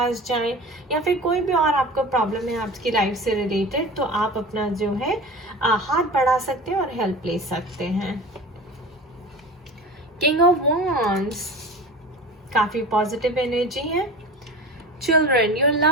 जाएं या फिर कोई भी और आपको प्रॉब्लम है आपकी लाइफ से रिलेटेड तो आप अपना जो है हाथ बढ़ा सकते हैं और हेल्प ले सकते हैं। किंग ऑफ वॉन्ड्स, काफ़ी पॉजिटिव एनर्जी है। Children, your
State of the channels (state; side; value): normal; both; correlation 0.35